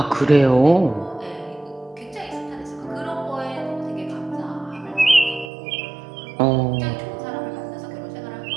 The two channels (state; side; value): drops out; left; at 5.5 s